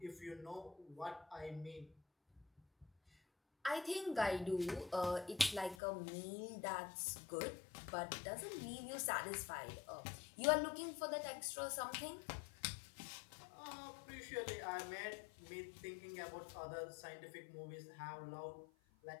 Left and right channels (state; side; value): drops out; right; at 5.8 s